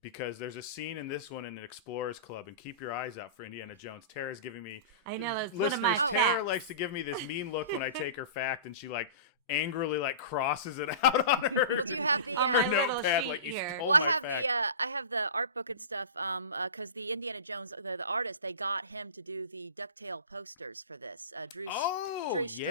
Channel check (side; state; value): both; inverted; correlation -0.33